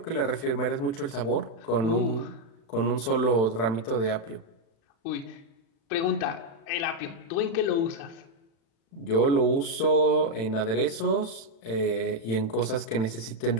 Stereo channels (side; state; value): right; late; 36 ms